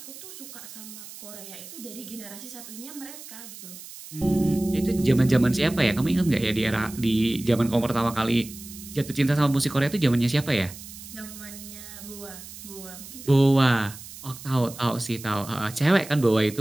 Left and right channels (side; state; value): right; noise; hiss, 15 dB below the sound